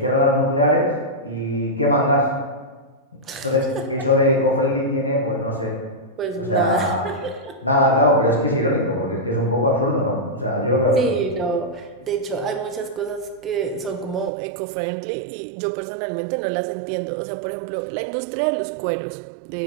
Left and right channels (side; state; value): left; drops out; at 14.3 s